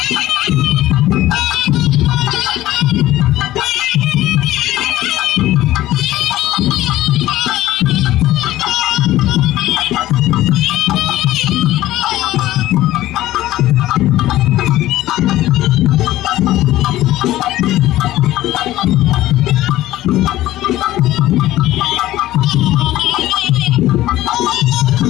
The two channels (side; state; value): right; quieter; 15.2 dB